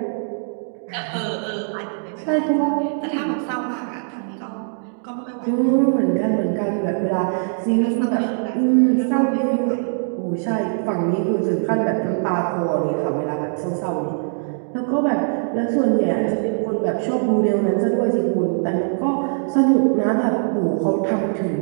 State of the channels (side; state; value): left; silent; digital silence